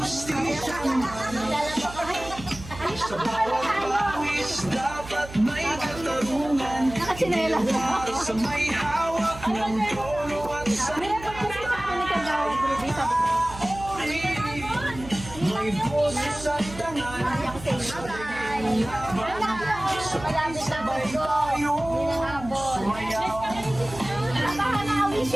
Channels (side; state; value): right; noise; hum, 14 dB below the sound